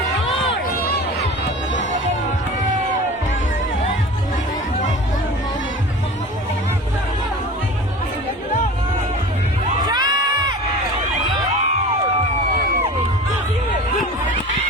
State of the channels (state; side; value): normal; both; correlation 0.37